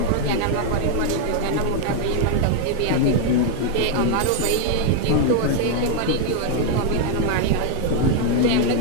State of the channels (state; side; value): different; both; correlation 0.00